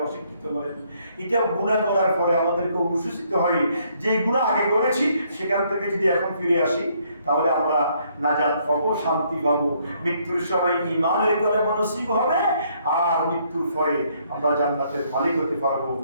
অশিক্ষিত বলেন, এটা গুনাহ করার পরে আমাদেরকে অনুশোচিত হয় যে গুনাহ আগে করেছি, সেখান থেকে যদি এখন ফিরে আসি তাহলে আমরা নাজাত পাবো, শান্তি পাবো। মৃত্যুর সময় ঈমানের কলমা নসিব হবে, আর মৃত্যুর পরে আমরা জান্নাতের মালিক হতে পারবো।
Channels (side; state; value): both; inverted; correlation -0.69